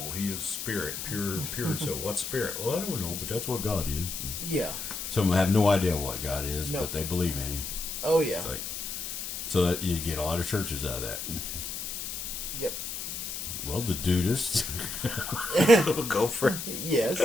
He is spirit, pure. So what's spirit? Well, I don't know, but that's what God is. Yeah. Some have no idea what God is, but they believe in Him. Oh yeah. So that you get a lot of churches out of that. Yep. Well, the Dudists. Go for it. Yes,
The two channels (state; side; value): noise; left; hiss, 6 dB below the sound